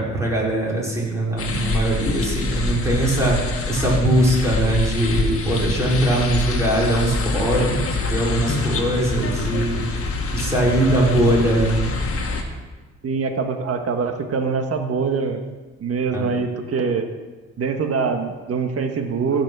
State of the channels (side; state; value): both; normal; correlation 0.50